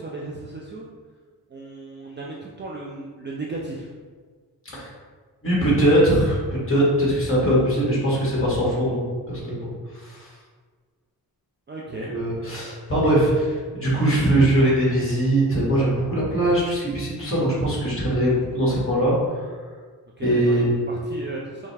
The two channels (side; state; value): both; normal; correlation 0.37